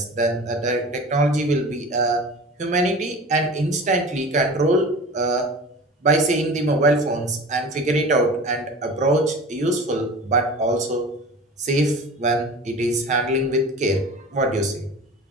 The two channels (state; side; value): normal; both; correlation 0.37